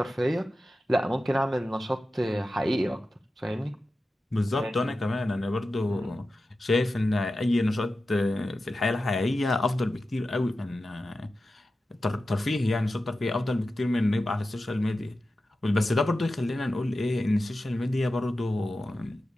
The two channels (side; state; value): both; normal; correlation 0.93